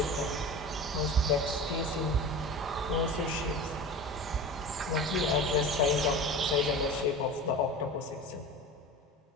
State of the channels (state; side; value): normal; both; correlation 0.33